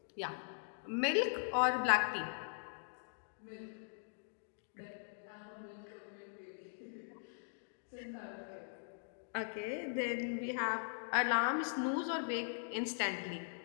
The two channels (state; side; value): silent; right; digital silence